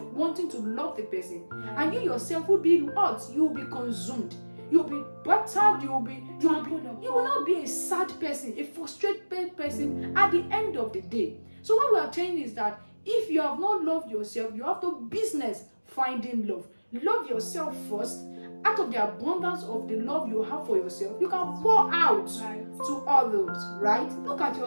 wanting to love the person, and you yourself will be hurt. You will be consumed. You'll be battered. You will not be a sad person, a frustrated person at the end of the day. So what we are saying is that if you have not loved yourself, you have to business finding love. Love yourself first. Out of the abundance of the love you have for yourself, you can pour out to others, right? Look at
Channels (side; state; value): both; inverted; correlation -1.00